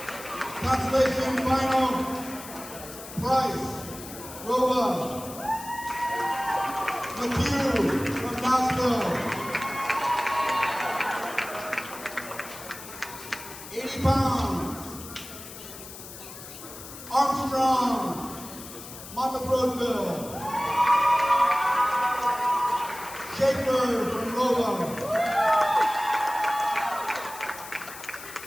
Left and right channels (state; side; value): noise; left; hiss, 14 dB below the sound